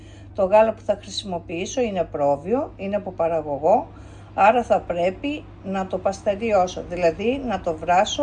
Το γάλα που θα χρησιμοποιήσω είναι πρόβιο, είναι από παραγωγό, άρα θα πρέπει να το παστεριώσω, δηλαδή να το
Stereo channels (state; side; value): identical; both; correlation 1.00